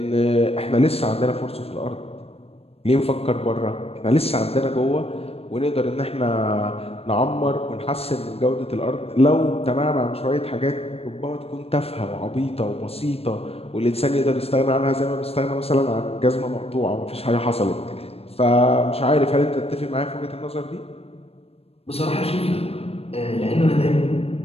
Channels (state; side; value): late; right; 0.29 ms